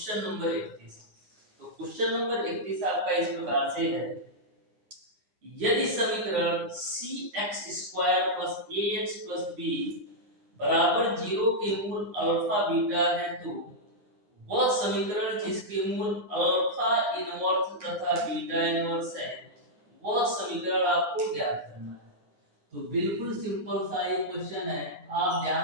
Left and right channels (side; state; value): left; late; 9.7 ms